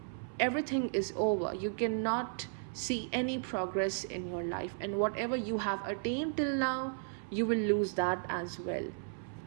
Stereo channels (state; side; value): silent; left; 55 dB below the other